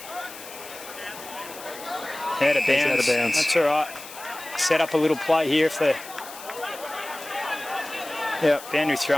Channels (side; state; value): left; noise; hiss, 15 dB below the sound